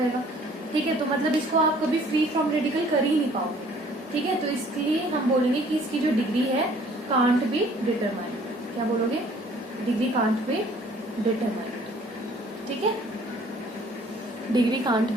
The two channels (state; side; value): normal; both; correlation 0.56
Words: ठीक है। तो मतलब इसको आप कभी फ्री फ्रॉम रेडिकल कर ही नहीं पाओगे, ठीक है। तो इसलिए हम बोलेंगे कि इसकी जो डिग्री है कांट बी डिटरमाइंड, क्या बोलोगे, डिग्री कांट बी डिटरमाइंड, ठीक है, डिग्री कांट